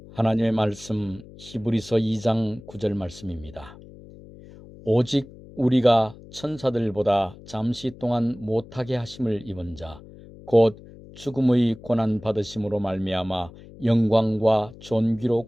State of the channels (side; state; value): left; noise; hum, 19 dB below the sound